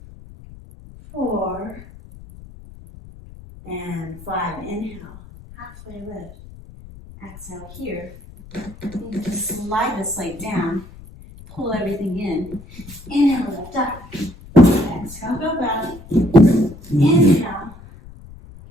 4, and 5. Inhale, halfway lift. Exhale here. You just slide this leg down, pull everything in. Inhale, lift up. Exhale, go back. Inhale,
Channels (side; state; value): left; noise; rumble, 18 dB below the sound